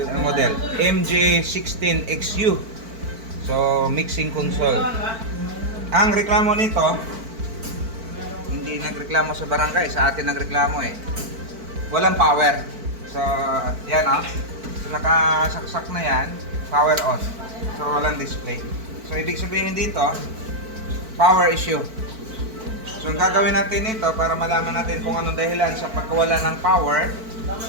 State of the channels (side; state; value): left; late; 4.5 ms